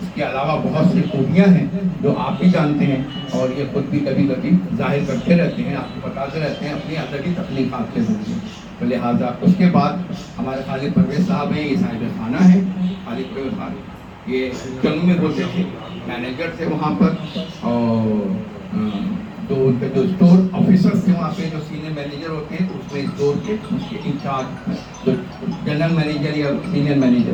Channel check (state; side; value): identical; both; correlation 1.00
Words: اس کے علاوہ بہت سی خوبیاں ہیں جو آپ بھی جانتے ہیں اور یہ خود بھی کبھی کبھی ظاہر کرتے رہتے ہیں، آپ کو بتاتے رہتے ہیں اپنی ادبی تخلیقات کے ذریعے. تو لہٰذا اس کے بعد ہمارے خالد پرویز صاحب ہیں. یہ صاحب خانہ ہیں خالد پرویز صاحب. یہ جنگل میں ہوتے تھے، مینیجر تھے وہاں پر اور تو ان کے جو اسٹور آفیسرس تھے وہاں پہ جو سینئر مینیجر ہوتے ہیں تو اس میں اسٹور کے اس کے انچارج جو جنرل مینیجر یا سینئر